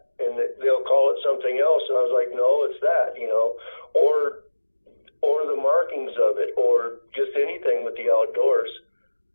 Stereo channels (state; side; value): inverted; both; correlation -1.00